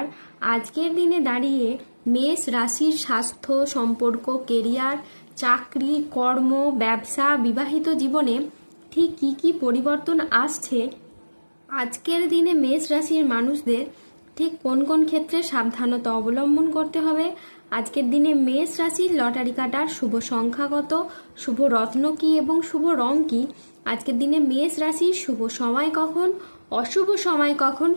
আজকের দিনে দাঁড়িয়ে মেষ রাশির স্বাস্থ্য, সম্পর্ক, কেরিয়ার, চাকরি, কর্ম, ব্যবসা, বিবাহিত জীবনে ঠিক কী কী পরিবর্তন আসছে, আজকের দিনে মেষ রাশির মানুষদের ঠিক কোন কোন ক্ষেত্রে সাবধানতা অবলম্বন করতে হবে, আজকের দিনে মেষ রাশির লটারি কাটার শুভ সংখ্যা কত, শুভ রত্ন কী এবং শুভ রং কী, আজকের দিনে মেষ রাশির শুভ সময় কখন, অশুভ সময় কখন,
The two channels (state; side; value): inverted; both; correlation -1.00